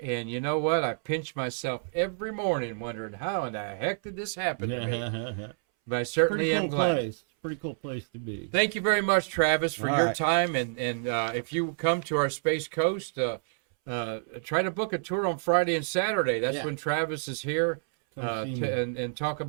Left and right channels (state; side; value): silent; left; 59 dB below the other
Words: And you know what? I pinch myself every morning wondering how in the heck did this happen to me? But I certainly am glad. It's a pretty cool place to be. Thank you very much, Travis, for your right. time. And if you come to our Space Coast, try to book a tour on Friday and Saturday. That's when Travis is here and talk